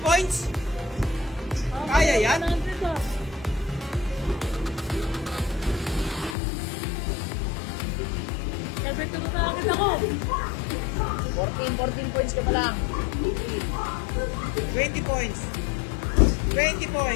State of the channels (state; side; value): drops out; right; at 6.4 s